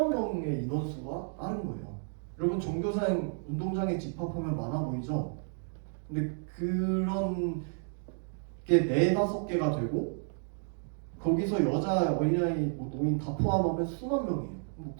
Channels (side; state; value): left; silent; 57 dB below the other